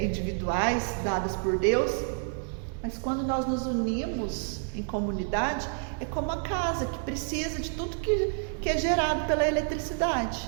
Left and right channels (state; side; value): silent; left; 59 dB below the other